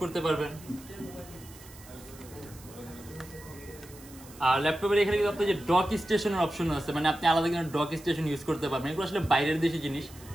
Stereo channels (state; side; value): noise; right; hiss, 20 dB below the sound